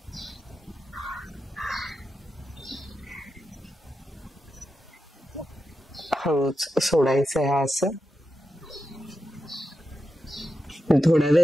हळूच सोडायचं आहे असं. थोडा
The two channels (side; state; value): both; normal; correlation 0.89